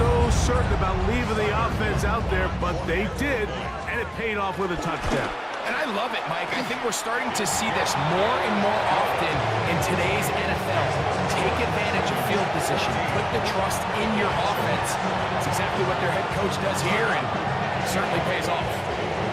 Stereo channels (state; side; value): identical; both; correlation 1.00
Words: certain about leaving the offense out there, but they did, and it paid off with a touchdown. And I love it, Mike. I think we're starting to see this more and more often in today's NFL. Take advantage of field position. Put the trust in your offense. That's exactly what their head coach does here, and it certainly pays off.